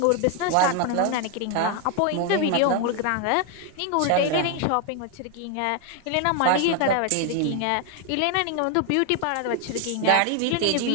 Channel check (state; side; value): different; both; correlation 0.01